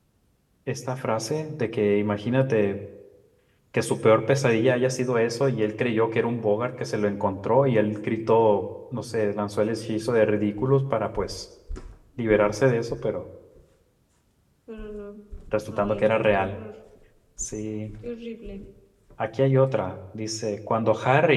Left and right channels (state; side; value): identical; both; correlation 1.00